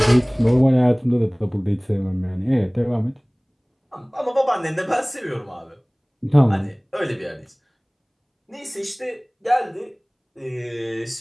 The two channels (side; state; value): both; identical; correlation 1.00